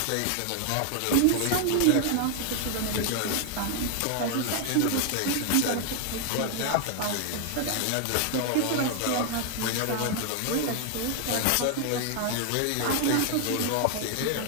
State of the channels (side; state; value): both; different; correlation 0.00